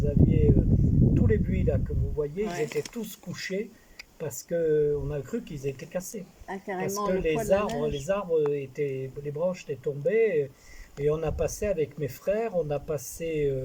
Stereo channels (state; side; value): identical; both; correlation 1.00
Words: aviez tous les buis là que vous voyez, ils ouais. étaient tous couchés parce que on a cru qu'ils étaient cassés. Ah, Parce carrément, que le poids de la neige. les branches étaient tombées et on a passé avec mes frères, on a passé